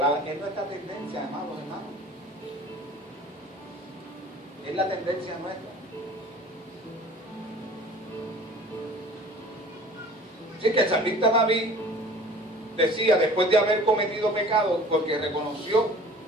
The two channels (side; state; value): both; normal; correlation 0.46